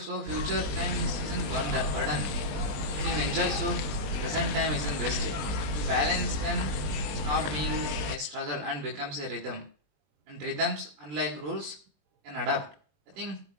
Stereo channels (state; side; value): late; left; 20 ms